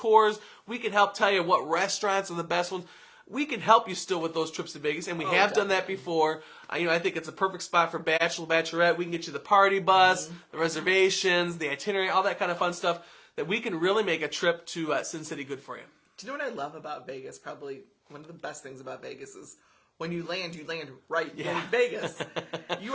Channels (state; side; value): identical; both; correlation 1.00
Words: We could help tell you what restaurants are the best ones. We can help you still with those trips to Vegas, and we have done that definitely. before. I think it's a perfect spot for bachelor, bachelorette. We can get you the party bus, the reservations, the itinerary, all that kind of fun stuff that we can really make a trip to Sin City good for you. Do you know what I love about Vegas? Probably one of the best things about Vegas is when you land right in Vegas.